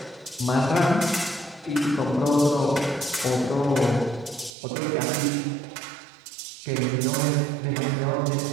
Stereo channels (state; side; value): drops out; left; at 4.5 s